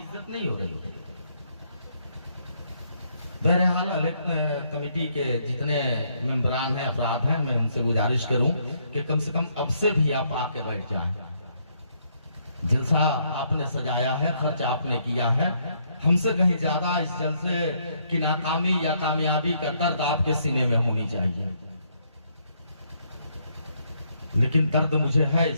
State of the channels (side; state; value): both; inverted; correlation -0.72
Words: नहीं हो रही है। बहरहाल कमेटी के जितने मेंबरान हैं, अफराद हैं, मैं उनसे गुजारिश करूं कि कम से कम अब से भी आप आके बैठ जाएं। जलसा आपने सजाया है, खर्च आपने किया है, हमसे कहीं ज्यादा इस जलसे की नाकामी या कामयाबी का दर्द आपके सीने में होनी चाहिए। लेकिन दर्द मुझे है